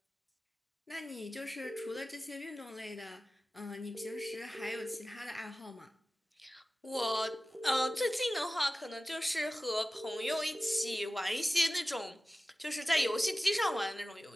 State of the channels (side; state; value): both; normal; correlation 0.96